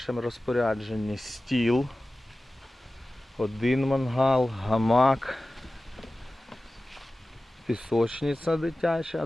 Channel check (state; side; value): normal; both; correlation 0.96